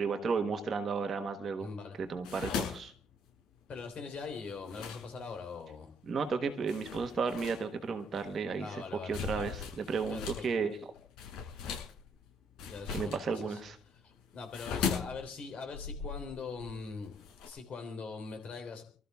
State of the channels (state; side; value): normal; both; correlation 0.68